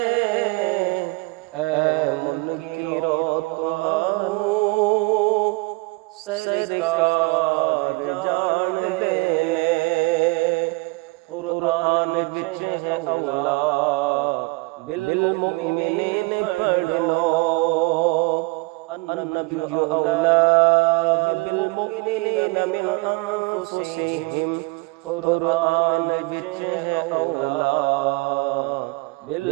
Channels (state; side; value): quieter; left; 26.8 dB